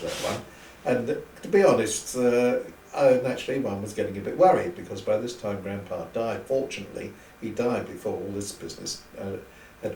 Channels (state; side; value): identical; both; correlation 1.00